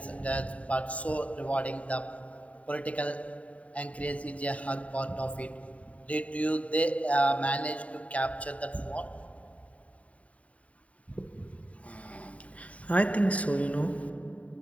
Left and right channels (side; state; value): right; late; 0.067 ms